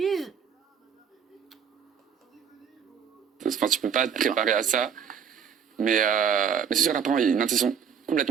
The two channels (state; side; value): quieter; left; 7.4 dB